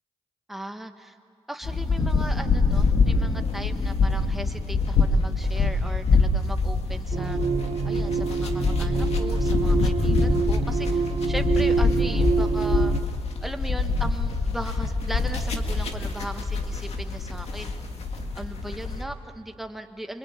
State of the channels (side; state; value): both; normal; correlation 0.74